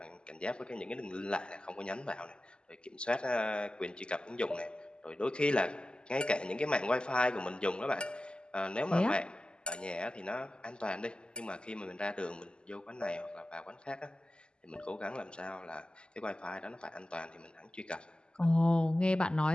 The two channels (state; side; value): late; right; 0.048 ms